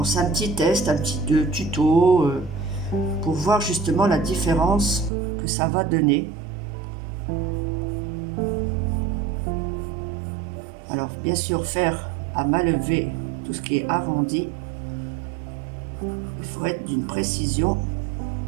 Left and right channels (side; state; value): left; drops out; at 5.1 s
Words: c'est un petit test, un petit tuto, pour voir justement la différence que ça va donner. Alors, bien sûr, faire à main levée tout ce qui est arrondi. Il faut être d'une précision.